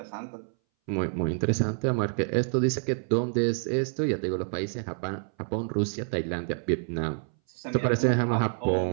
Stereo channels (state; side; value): silent; left; 59 dB below the other